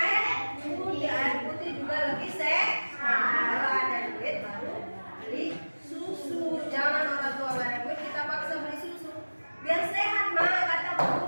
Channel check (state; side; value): inverted; both; correlation -1.00